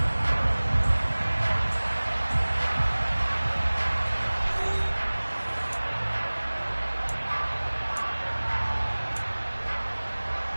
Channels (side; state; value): both; inverted; correlation -1.00